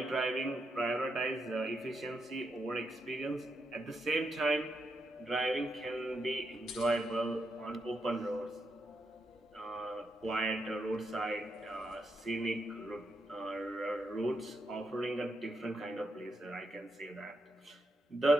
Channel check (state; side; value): normal; both; correlation 0.82